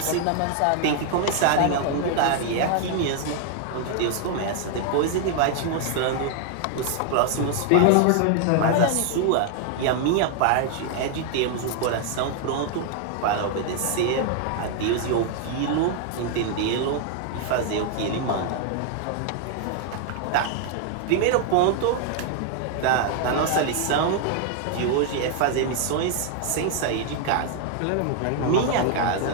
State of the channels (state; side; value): different; both; correlation 0.00